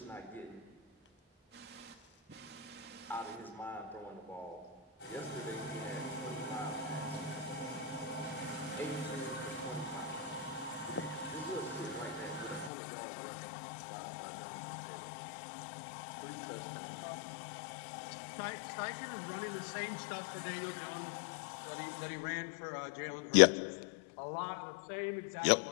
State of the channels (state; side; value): drops out; right; at 12.7 s